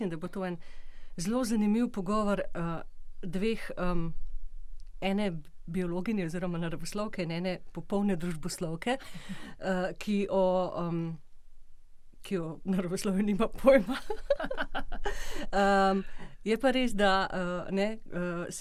da bo to en zelo zanimiv pogovor dveh, ene biologinje oziroma naravoslovke in ene popolne družboslovke, ki o naravoslovju nima pojma. Je pa res, da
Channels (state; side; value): identical; both; correlation 1.00